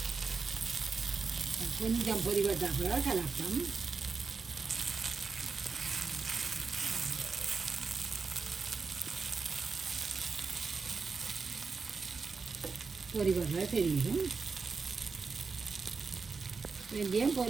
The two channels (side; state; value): left; quieter; 4.8 dB